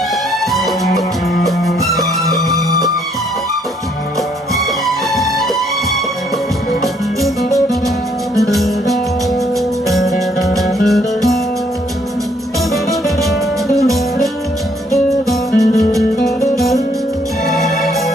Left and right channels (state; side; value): normal; both; correlation 0.68